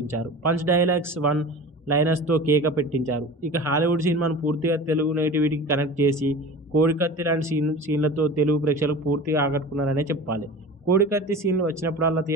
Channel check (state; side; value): normal; both; correlation 0.35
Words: పంచ్ డైలాగ్స్, వన్ లైనర్స్తో కేక పెట్టించారు. ఇక హాలీవుడ్ సినిమాను పూర్తిగా తెలుగు నేటివిటీకి కనెక్ట్ చేసి కోడికత్తి లాంటి సీన్లతో తెలుగు ప్రేక్షకులకు పూర్తిగా ఆకట్టుకున్నారనే చెప్పాలి. కోడికత్తి సీన్లు వచ్చినప్పుడల్లా